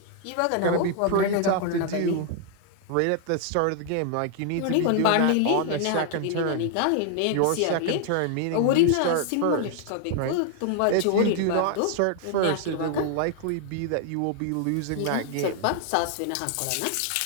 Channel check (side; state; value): both; different; correlation 0.00